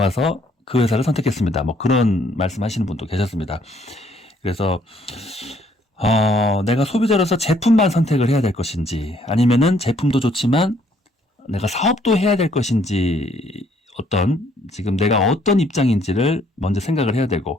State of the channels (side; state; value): both; normal; correlation 0.66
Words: 그 회사를 선택했습니다. 뭐 그런 말씀하시는 분도 계셨습니다. 그래서 내가 소비자로서 제품만 선택을 해야 될 것인지 아니면은 제품도 좋지만 내가 사업도 해야 될 것인지 지금 내가 어떤 입장인지를 먼저 생각을 해야